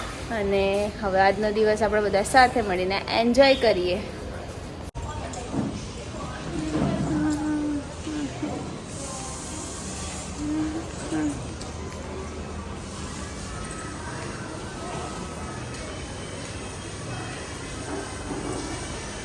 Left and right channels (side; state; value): both; identical; correlation 1.00